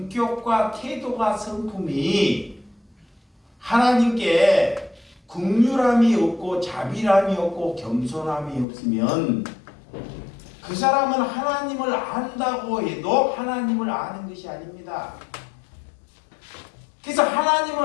태도가 성품이 하나님께 긍휼함이 없고 자비함이 없고 겸손함이 없으면 그 사람은 하나님을 안다고 해도 하나님을 아는 것이 아닙니다. 그래서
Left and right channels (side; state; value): right; drops out; at 8.7 s